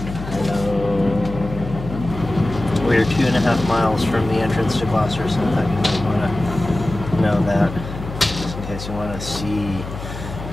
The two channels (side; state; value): left; noise; hum, 10 dB below the sound